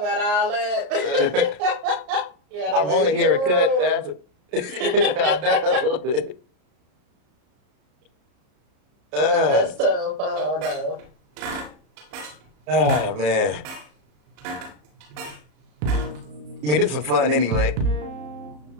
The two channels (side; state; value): left; late; 33 ms